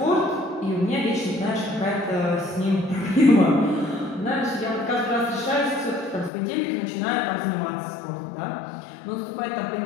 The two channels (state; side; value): drops out; right; at 6.3 s